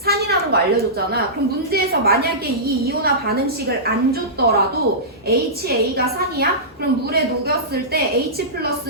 거 알려줬잖아. 그럼 문제에서 만약에 이 이온화 반응식을 안 줬더라도 HA가 산이야? 그럼 물에 녹였을 때 H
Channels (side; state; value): both; normal; correlation -0.18